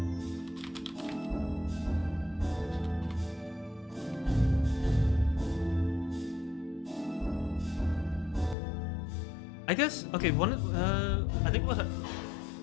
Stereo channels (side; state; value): right; drops out; at 8.6 s